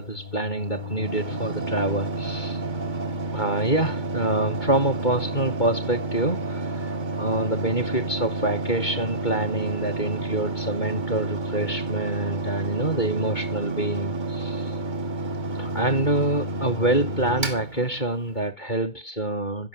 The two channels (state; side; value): late; right; 2.2 ms